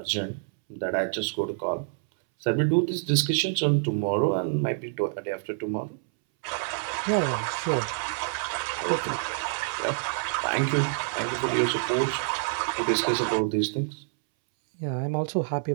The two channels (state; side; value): silent; left; 60 dB below the other